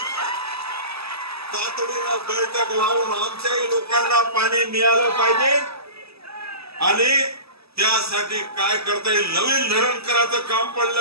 तातडीनं बैठक लावून आमच्याही लोकांना पाणी मिळालं पाहिजे आणि त्यासाठी काय करता येईल. नवीन धरण करायचं काम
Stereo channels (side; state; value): left; late; 0.78 ms